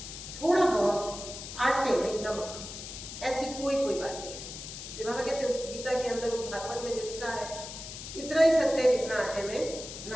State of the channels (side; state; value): left; noise; hiss, 10 dB below the sound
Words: थोड़ा बहुत आटे में नमक, ऐसी कोई बातें हैं। इसलिए बाबा कहते हैं उस गीता के अंदर, उस भागवत में जो लिखा है इतना ही सत्य है जितना आटे में